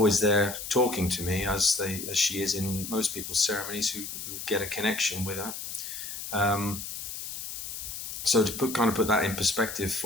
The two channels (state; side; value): noise; left; hiss, 8 dB below the sound